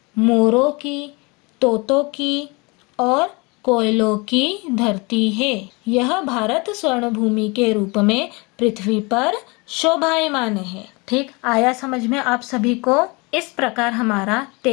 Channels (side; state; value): right; quieter; 27.6 dB